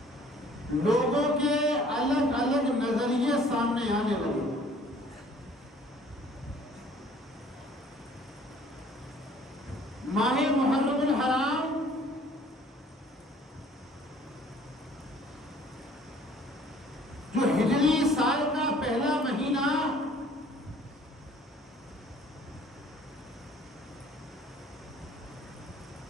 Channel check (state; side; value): normal; both; correlation 0.55